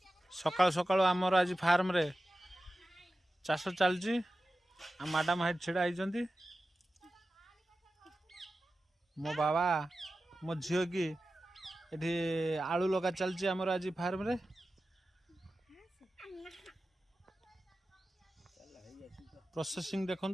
सकाल सकाल आमर आज फार्म रे चाष चलची मैडम हाइट छिड़ा होती मो बाबा मो झील की ये आलू लगा चलची आमर आज फार्म रे प्रोसेसिंग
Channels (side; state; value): both; normal; correlation 0.94